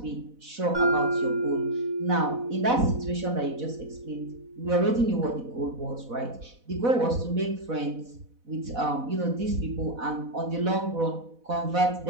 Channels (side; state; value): left; late; 4.1 ms